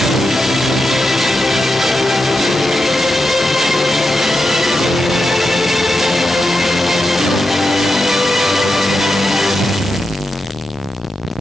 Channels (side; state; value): both; normal; correlation 0.87